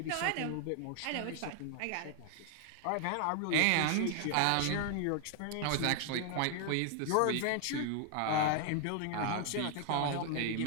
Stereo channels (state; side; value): different; both; correlation 0.00